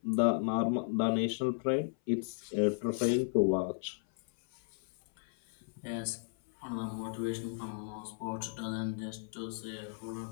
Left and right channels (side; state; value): right; silent; 54 dB below the other